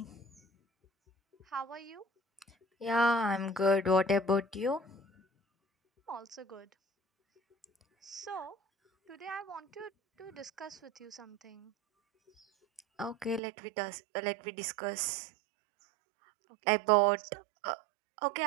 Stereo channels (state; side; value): drops out; left; at 13.4 s